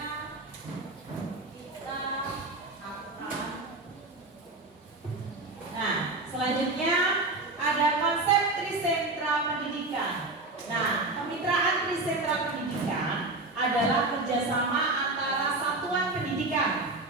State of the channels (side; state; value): left; quieter; 3.1 dB